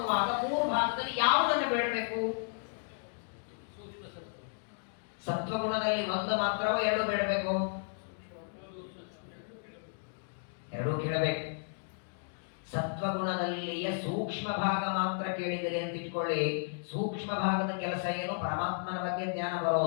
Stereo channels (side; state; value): right; silent; digital silence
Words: 3 ಭಾಗದಲ್ಲಿ ಯಾವುದನ್ನು ಬೇಡಬೇಕು? ಸತ್ವಗುಣದಲ್ಲಿ 1 ಮಾತ್ರವೋ 2 ಬೇಡಬೇಕು? 2 ಕೇಳಬೇಕು. ಸತ್ವಗುಣದಲ್ಲಿಯ ಸೂಕ್ಷ್ಮ ಭಾಗ ಮಾತ್ರ ಕೇಳಿದರೆ ಅಂತ ಇಟ್ಕೊಳ್ಳಿ. ಸೂಕ್ಷ್ಮ ಭಾಗದ ಕೆಲಸ ಏನು? ಪರಮಾತ್ಮನ ಬಗ್ಗೆ ಜ್ಞಾನ